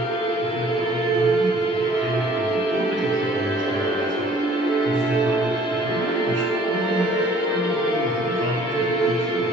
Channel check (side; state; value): both; normal; correlation 0.55